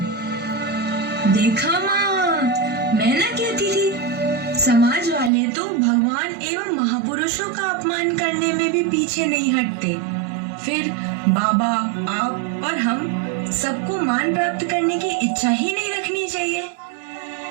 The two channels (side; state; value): left; drops out; at 5.3 s